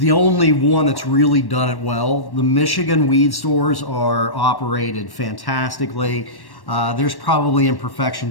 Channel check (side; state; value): right; late; 1.1 ms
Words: only one that's really done it well. The Michigan weed stores are operated fantastically. There's probably